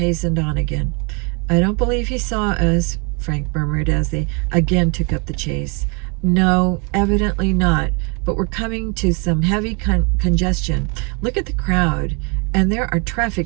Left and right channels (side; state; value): left; quieter; 33.2 dB